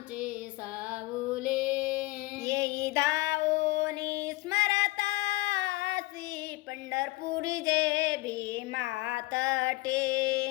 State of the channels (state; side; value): quieter; right; 20.3 dB